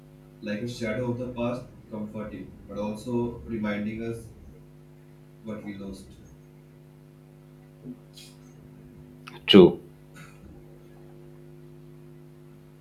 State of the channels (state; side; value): identical; both; correlation 1.00